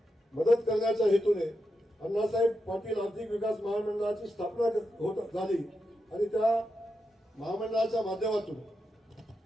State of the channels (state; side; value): normal; both; correlation 0.87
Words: मदत करण्याच्या हेतूने अण्णासाहेब पाटील आर्थिक विकास महामंडळाची स्थापना झाली आणि त्या महामंडळाच्या माध्यमातून